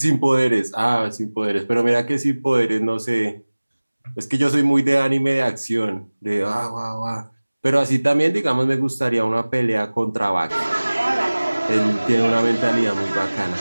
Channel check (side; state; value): both; inverted; correlation -1.00